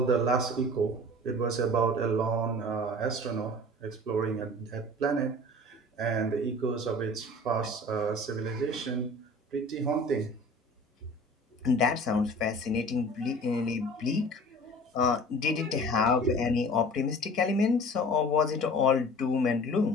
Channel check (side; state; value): both; normal; correlation 0.43